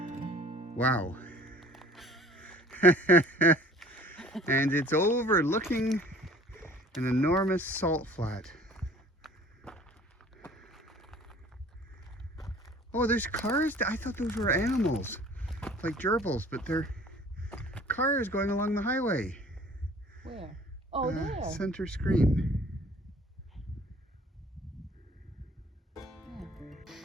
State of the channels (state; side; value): normal; both; correlation 0.50